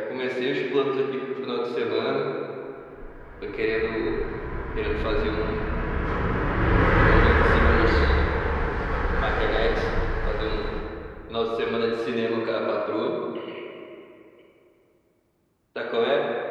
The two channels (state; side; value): identical; both; correlation 1.00